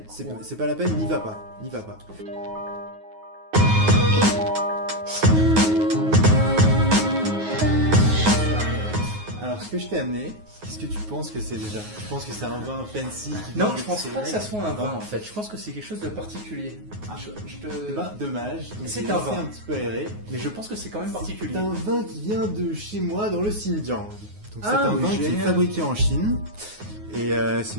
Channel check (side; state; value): left; late; 9.5 ms